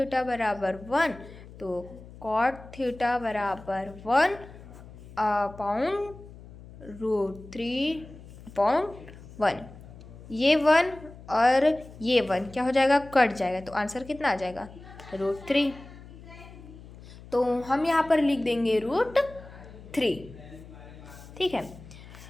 बराबर 1, तो cot थीटा बराबर 1/√3/1। ये 1 और ये 1 क्या हो जाएगा? कट जाएगा, तो आंसर कितना आ जाएगा? √3। तो हम यहाँ पर लिख देंगे √3, ठीक है।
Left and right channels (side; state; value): left; noise; hum, 18 dB below the sound